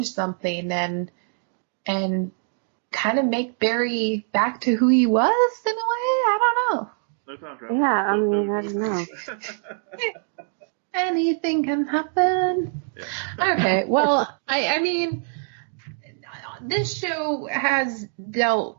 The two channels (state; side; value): silent; left; digital silence